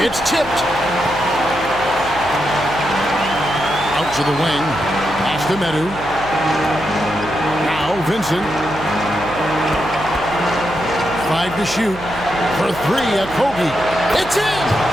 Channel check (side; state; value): right; noise; hum, 15 dB below the sound